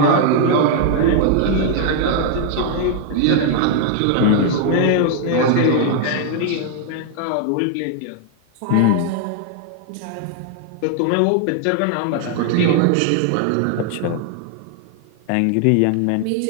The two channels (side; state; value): both; different; correlation 0.00